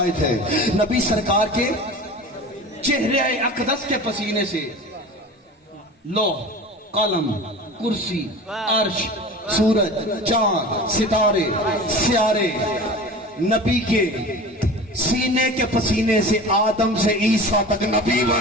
है, नबी सरकार के चेहरे अकदस के पसीने से लौह, कलम, कुर्सी, अर्श, सूरज, चांद, सितारे, स्यारे, नबी के सीने के पसीने से आदम से ईसा तक नबी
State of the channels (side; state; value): both; normal; correlation 0.36